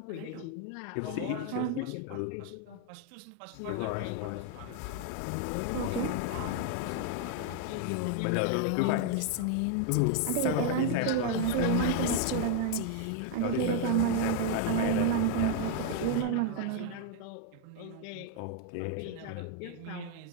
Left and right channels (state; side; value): different; both; correlation 0.00